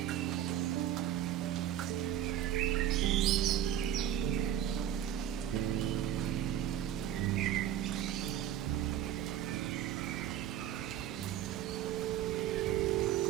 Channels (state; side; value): quieter; left; 11.2 dB